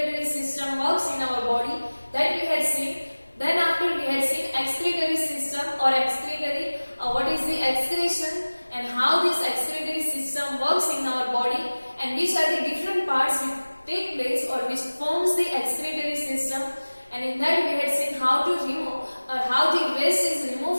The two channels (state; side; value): inverted; both; correlation -1.00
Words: system works in our body, that we had seen. Then after we had seen excretory system or excretory, what is the excretion and how this excretory system works in our body and which are the different parts which take place or which forms the excretory system. And in that we had seen how to remove or how the waste is